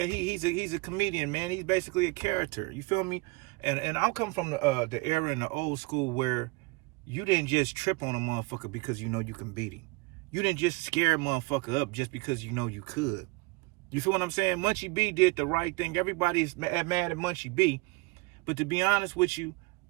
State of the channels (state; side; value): quieter; left; 26.1 dB